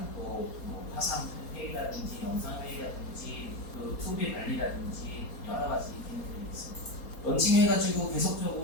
화상 회의라든지 영상 회의라든지 투비 관리라든지 여러 가지 기능들이 있습니다. 런칭해가지고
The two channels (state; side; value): late; right; 4.3 ms